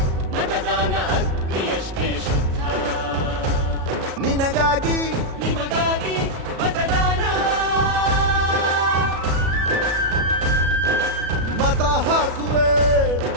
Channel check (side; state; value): left; late; 37 ms